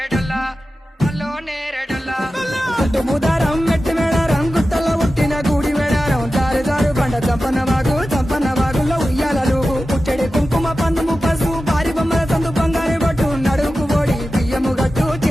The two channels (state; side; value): normal; both; correlation 0.94